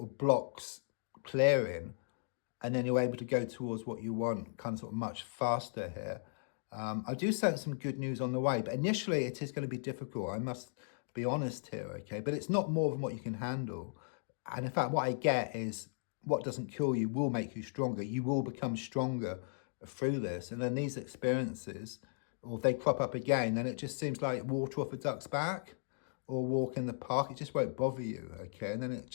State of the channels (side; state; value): right; silent; digital silence